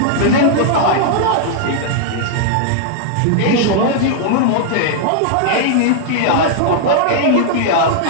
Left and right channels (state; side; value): different; both; correlation -0.01